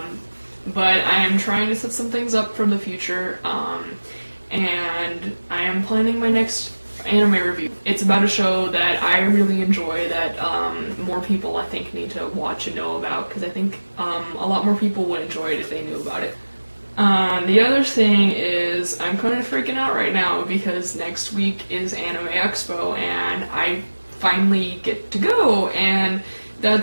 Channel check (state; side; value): inverted; both; correlation -1.00